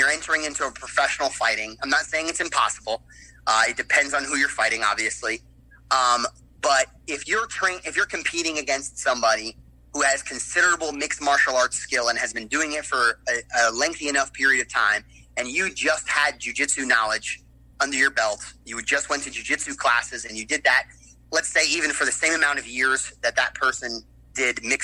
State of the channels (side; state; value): both; identical; correlation 1.00